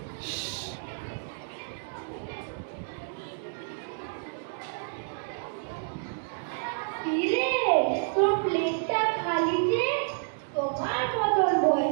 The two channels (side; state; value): left; silent; digital silence